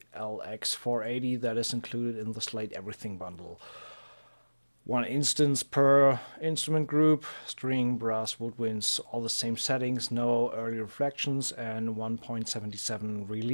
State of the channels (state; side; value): inverted; both; correlation -1.00